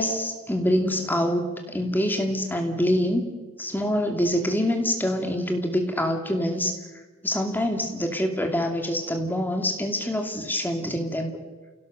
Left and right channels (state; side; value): normal; both; correlation 0.65